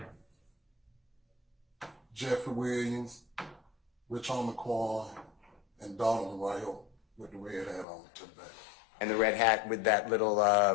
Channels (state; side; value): drops out; right; at 7.9 s